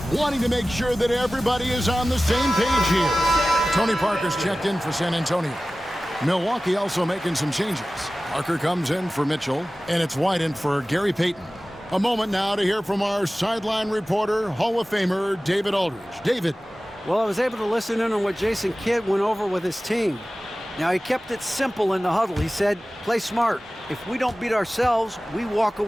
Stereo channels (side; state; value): both; normal; correlation 0.96